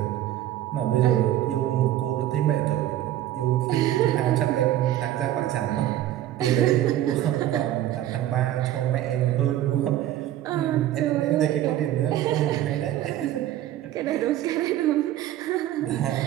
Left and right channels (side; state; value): left; quieter; 13.0 dB